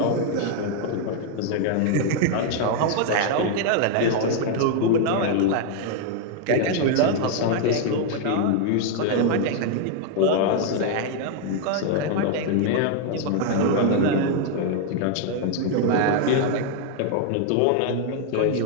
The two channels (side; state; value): both; different; correlation 0.00